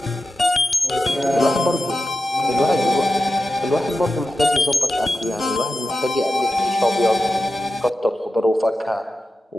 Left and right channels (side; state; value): both; normal; correlation 0.90